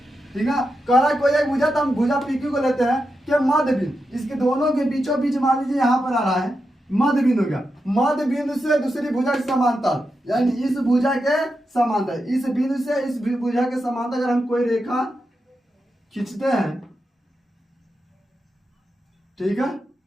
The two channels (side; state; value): both; normal; correlation 0.88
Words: ठीक है। कह रहा है कोई एक भुजा, तो हम भुजा पी क्यू को लेते हैं कि मध्य बिंदु, इसके दोनों के बीचों बीच मान लीजिए यहाँ पर आ रहा है मध्य बिंदु का, मध्य बिंदु से दूसरी भुजा के समांतर, यानी इस भुजा के समांतर, इस बिंदु से इस भुजा के समांतर अगर हम कोई रेखा खींचते हैं, ठीक है,